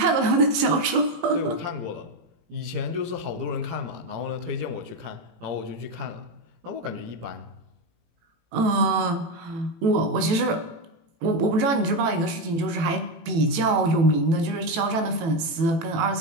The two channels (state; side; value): late; left; 18 ms